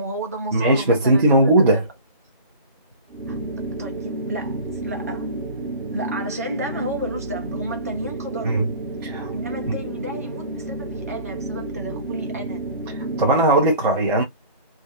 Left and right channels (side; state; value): both; inverted; correlation -0.42